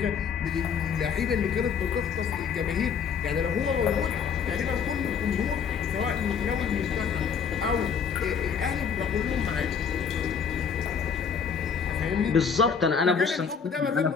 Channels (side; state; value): right; quieter; 6.5 dB